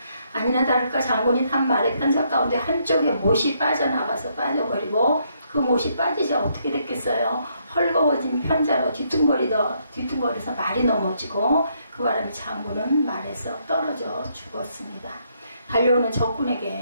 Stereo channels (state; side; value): inverted; both; correlation -0.73